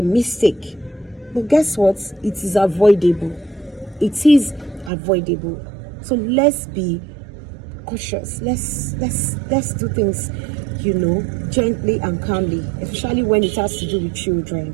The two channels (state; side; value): drops out; left; at 4.9 s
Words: mistake, but guess what? It is avoidable. It is avoidable. So let's be cautious. Let's do things, you know, gently and calmly, especially when it has to do with